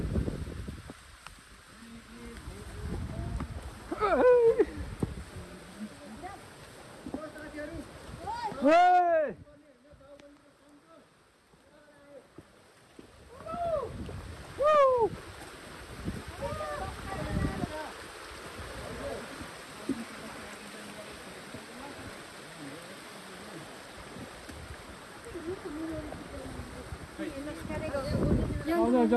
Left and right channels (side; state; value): both; identical; correlation 1.00